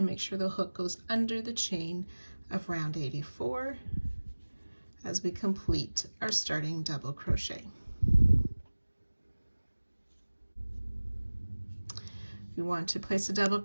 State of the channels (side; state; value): both; inverted; correlation -1.00